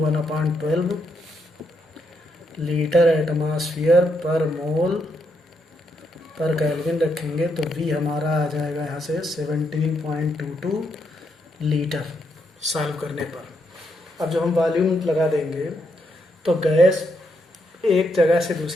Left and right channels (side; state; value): both; normal; correlation 0.78